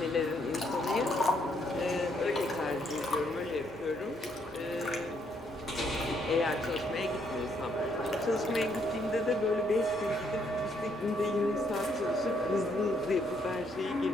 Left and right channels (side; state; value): both; normal; correlation 0.72